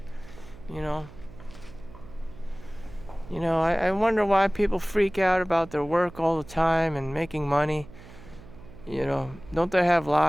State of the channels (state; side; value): noise; right; hum, 19 dB below the sound